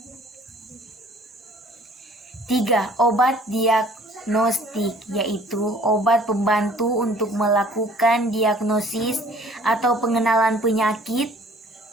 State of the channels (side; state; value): both; normal; correlation 0.54